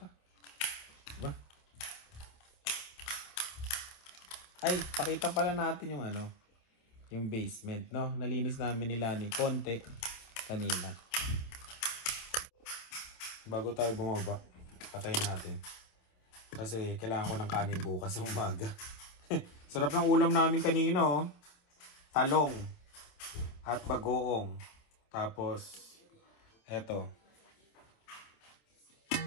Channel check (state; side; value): late; right; 27 ms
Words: Ba? Ay, pakita pala natin yung yung basement, no? Nalinis namin ni Lani konti kanina. Bago tayo bumaba, patayin natin. Kasi kailangan ko ng kanin bukas sa umaga. Sarap ng ulam namin kanina, Talong at bagoong. Tapos, eto.